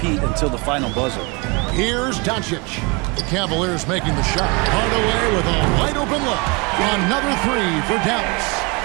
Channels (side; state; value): left; quieter; 28.8 dB